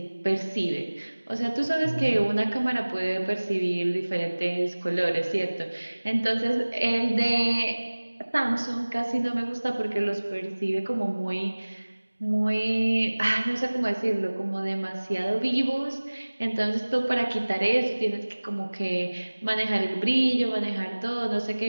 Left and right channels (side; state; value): both; inverted; correlation -1.00